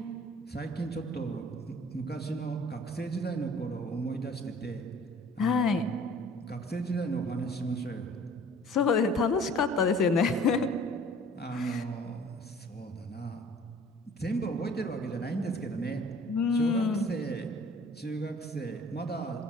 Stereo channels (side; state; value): both; normal; correlation 0.50